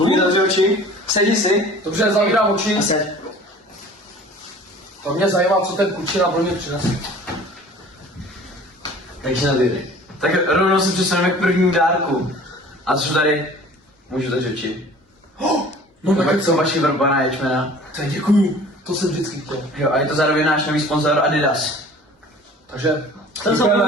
zavři oči. Sedni si. Dobře, zavírám oči. A seď. To mě zajímá, co ten klučina pro mě přinese. Takže navíry. Tak rovnou se přesuneme k prvnímu dárku. A co tady? Můžu zavřít oči. No Tak tak jsou vaši vrbaná ječmena. tak děkuju. To jsem vždycky chtěl. Jo, a je to zároveň náš nový sponzor Adidas. Takže To jsem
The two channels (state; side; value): normal; both; correlation 0.46